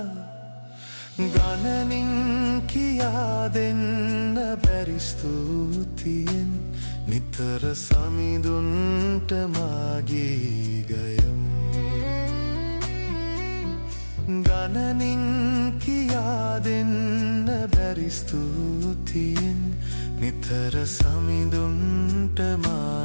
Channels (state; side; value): inverted; both; correlation -1.00